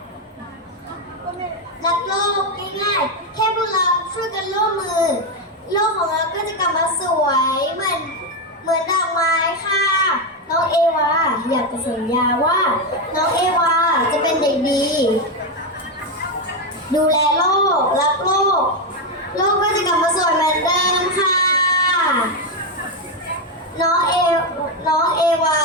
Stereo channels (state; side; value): normal; both; correlation 0.08